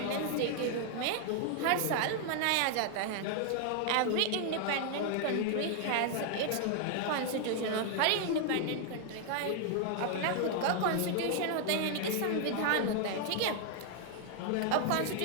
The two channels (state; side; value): different; both; correlation 0.00